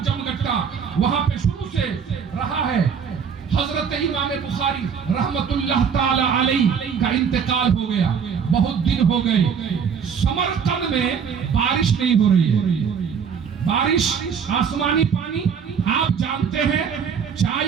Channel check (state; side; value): quieter; left; 6.8 dB